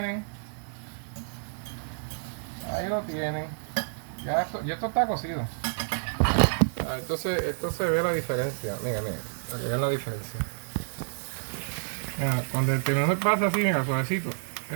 Ahí lo tienen. Ya esto está cocido. Ah, entonces esto se ve la diferencia. Mira, para que vean la diferencia. Mira, cuando el tenedor pasa así, mira, suavecito.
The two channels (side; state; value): left; silent; digital silence